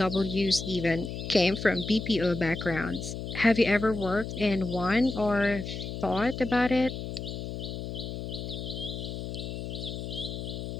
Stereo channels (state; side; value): noise; left; hum, 6 dB below the sound